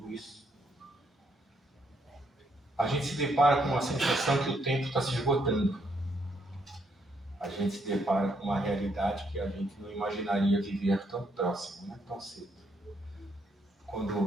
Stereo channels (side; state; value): both; normal; correlation 0.74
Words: isso. A gente se depara com uma sensação que o tempo está se esgotando. A gente se depara com uma realidade que a gente não imaginaria viver tão próximo, né? Tão cedo.